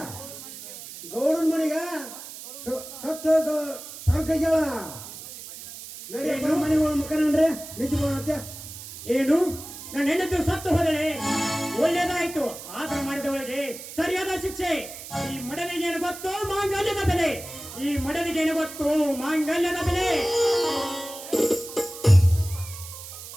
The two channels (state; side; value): noise; right; hiss, 12 dB below the sound